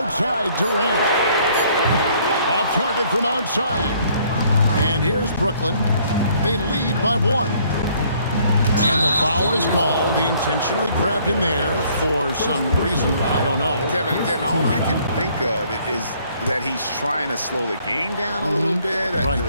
Durant. Off target from outside. And here's Brooklyn. They lead by 1. And the foul is called. He intentionally grabbed him there for some reason. I don't know. Kevin, all I can think of is that he's trying to slow the game down a little bit. Right.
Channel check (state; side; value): inverted; both; correlation -0.62